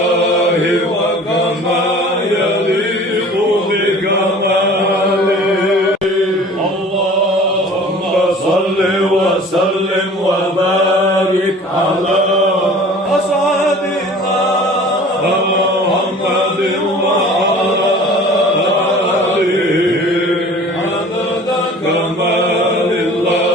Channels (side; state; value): both; normal; correlation 0.45